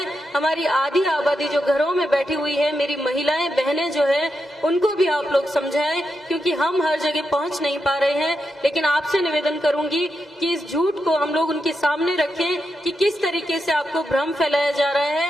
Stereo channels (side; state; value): both; normal; correlation 0.85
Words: हमारी आधी आबादी जो घरों में बैठी हुई है, मेरी महिलाएं बहनें जो है, उनको भी आप लोग समझाएं, क्योंकि हम हर जगह पहुंच नहीं पा रहे हैं। लेकिन आपसे निवेदन करूंगी कि इस झूठ को हम लोग उनके सामने रखें कि किस तरीके से आपको भ्रम फैलाया जा रहा है